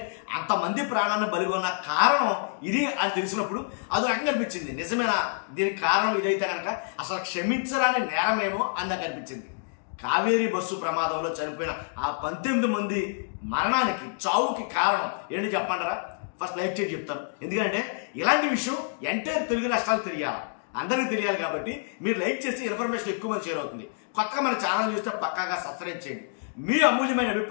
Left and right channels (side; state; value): right; silent; digital silence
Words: అంతమంది ప్రాణాన్ని బలిగొన్న కారణం ఇది అని తెలిసినప్పుడు అది రకంగా అనిపించింది. నిజమేనా దీనికి కారణం ఇదైతే కనుక అసలు క్షమించరాని నేరమేమో అని నాకు అనిపించింది. కావేరీ బస్సు ప్రమాదంలో చనిపోయిన ఆ 19 మంది మరణానికి చావుకి కారణం ఏంటి చెప్పమంటారా? ఫస్ట్ లైక్ చేసి చెప్తాను. ఎందుకంటే ఇలాంటి విషయం ఎంటైర్ తెలుగు రాష్ట్రాలు తెలియాలి, అందరికీ తెలియాలి. కాబట్టి మీరు లైక్ చేసి ఇన్ఫర్మేషన్ ఎక్కువ మంది షేర్ అవుతుంది. కొత్తగా మన ఛానల్ చూస్తే పక్కాగా సబ్స్క్రైబ్ చేయండి. మీ అమూల్యమైన